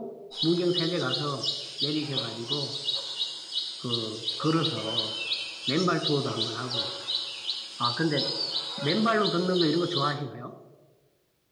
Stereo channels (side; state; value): both; identical; correlation 1.00